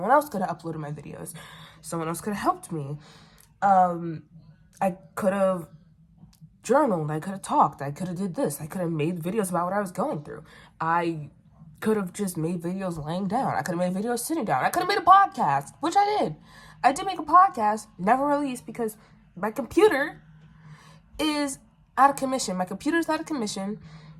else could have uploaded my videos, someone else could have helped me. I could have journaled, I could have talked, I could have did this, I could have made videos about what I was going through. I could have just made videos laying down. I could have made videos sitting down. I could have made a podcast, which I did. I did make a podcast, never released because my computer is out of commission. My computer's out of commission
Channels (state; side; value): identical; both; correlation 1.00